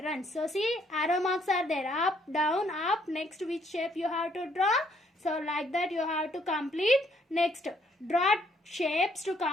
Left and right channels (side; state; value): both; normal; correlation 0.68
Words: So see, arrow marks are there. Up, down, up. Next, which shape you have to draw? So like that you have to complete. Next, draw shapes to